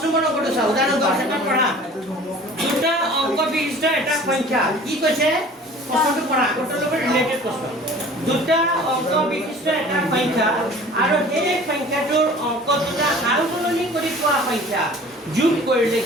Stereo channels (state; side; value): normal; both; correlation 0.46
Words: নম্বৰ অংকটো চাওঁ উদাহৰণ 10 এটা পঢ়া দুটা অংক বিশিষ্ট এটা সংখ্যা কি কৈছে প্ৰশ্নটো পঢ়া আগৰ লগত ৰিলেটেড প্ৰশ্ন দুটা অংক বিশিষ্ট এটা সংখ্যা আৰু সেই সংখ্যাটোৰ অংক দুটা সাল সলনি কৰি পোৱা সংখ্যা যোগ কৰিলে